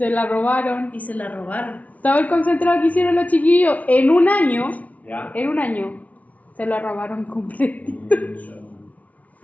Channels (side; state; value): right; late; 0.070 ms